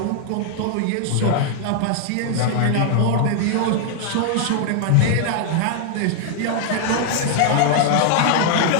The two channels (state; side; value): different; both; correlation 0.00